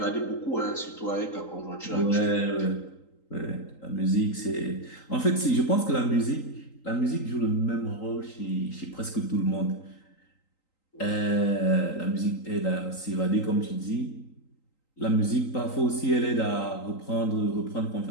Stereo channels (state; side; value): late; right; 3.8 ms